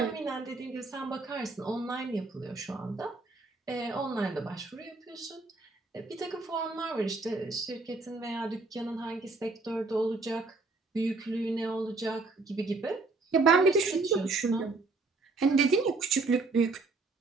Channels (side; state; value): left; quieter; 3.6 dB